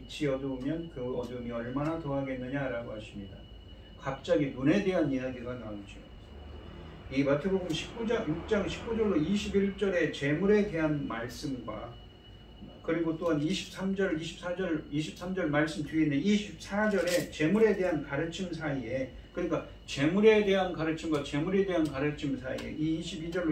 어두우면 그 어두움이 얼마나 더하겠느냐라고 하십니다. 갑자기 눈에 대한 이야기가 나오죠. 이 마태복음 6장 19절로 21절의 재물에 대한 말씀과 그리고 또한 23절 말씀 뒤에 있는 24절의 재물에 대한 가르침 사이에, 그러니까 재물에 대한 가르침과 재물에 대한 가르침 사이에 이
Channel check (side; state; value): both; identical; correlation 1.00